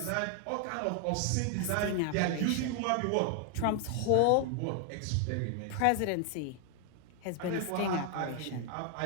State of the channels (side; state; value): both; different; correlation 0.00